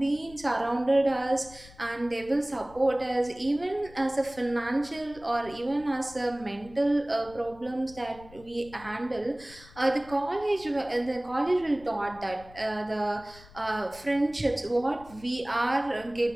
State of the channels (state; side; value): noise; left; rumble, 21 dB below the sound